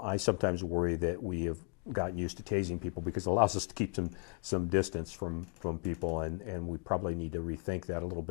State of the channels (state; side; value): quieter; right; 35.5 dB